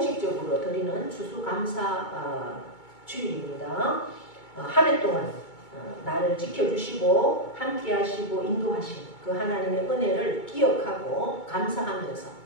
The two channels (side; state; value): right; late; 2.2 ms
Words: 드리는 추수감사 주일입니다. 한 해 동안 나를 지켜주시고 함께하시고 인도하신 그 하나님의 은혜를 기억하고 감사하면서